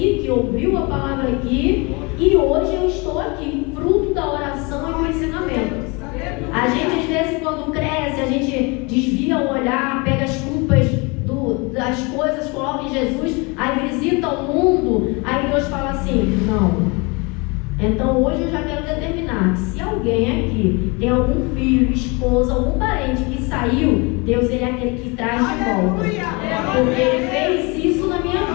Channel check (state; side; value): quieter; right; 28.5 dB